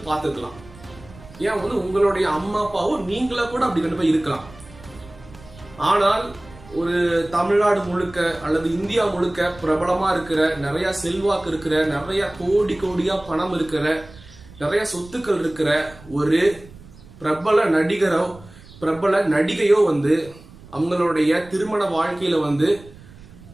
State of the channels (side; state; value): right; noise; rumble, 21 dB below the sound